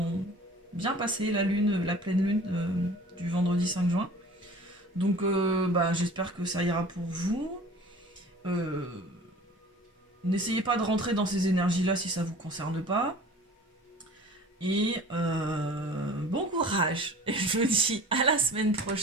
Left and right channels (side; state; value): both; normal; correlation 0.44